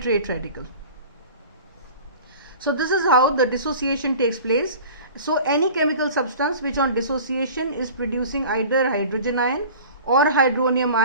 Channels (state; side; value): inverted; both; correlation -0.41